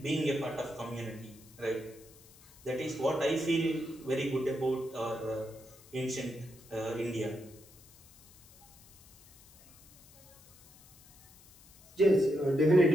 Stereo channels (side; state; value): left; noise; hiss, 24 dB below the sound